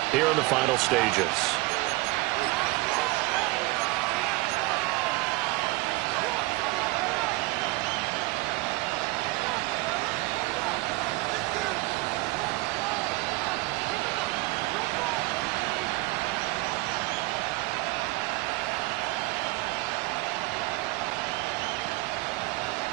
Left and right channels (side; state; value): left; quieter; 21.6 dB